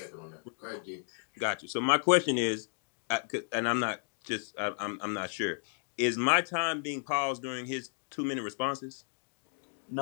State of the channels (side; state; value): right; silent; 56 dB below the other